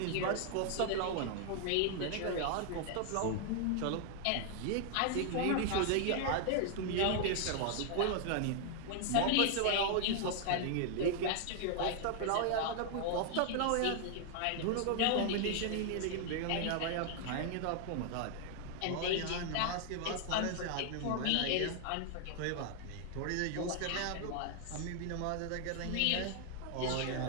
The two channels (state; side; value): different; both; correlation 0.00